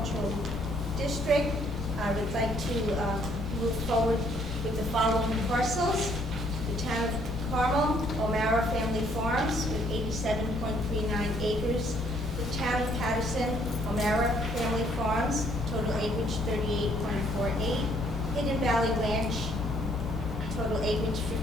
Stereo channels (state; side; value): noise; left; rumble, 11 dB below the sound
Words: District. I would like to move forward with the following parcels. The town of Carmel, O'Mara Family Farms with 87.39 acres. The town of Patterson, O'Mara Family Farms, total acreage 38.48. Hidden Valley Ranch, total acreage